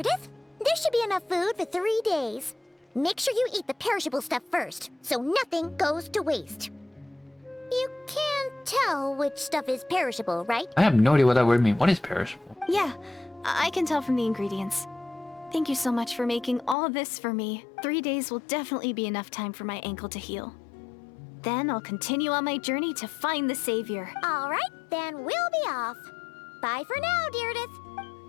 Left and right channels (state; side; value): drops out; right; at 16.8 s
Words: there should be enough food for 3 days. Make sure you eat the perishable stuff first, so nothing goes to waste. You can't tell which stuff is perishable, right? I have no idea what that word means. What is perishable? Yeah, I can tell from the ingredients. Thank you so much for making all this for me. 3 days will definitely be enough time for my ankle to heal. Then I'll continue on my journey to find the savior. All right, then we'll be off. Bye for now, Deirdre.